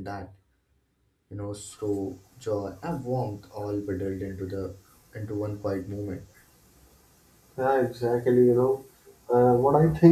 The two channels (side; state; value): both; identical; correlation 1.00